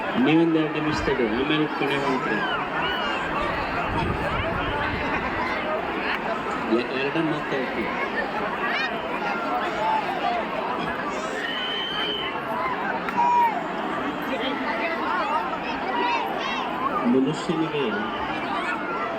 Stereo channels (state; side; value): identical; both; correlation 1.00